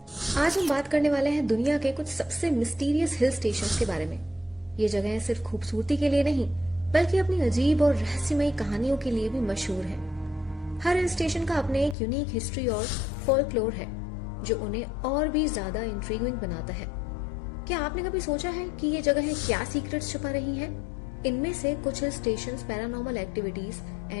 आज हम बात करने वाले हैं दुनिया के कुछ सबसे मिस्टीरियस हिल स्टेशंस के बारे में। ये जगहें सिर्फ खूबसूरती के लिए नहीं, बल्कि अपनी अजीब और रहस्यमयी कहानियों के लिए भी मशहूर है। हर हिल स्टेशन का अपने एक यूनिक हिस्ट्री और फोल्कलोर है, जो उन्हें और भी ज्यादा इंट्रिगिंग बनाता है। क्या आपने कभी सोचा है कि ये जगहें क्या सीक्रेट्स छुपा रही हैं? इनमें से कुछ hill stations paranormal activities,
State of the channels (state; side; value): drops out; right; at 12.0 s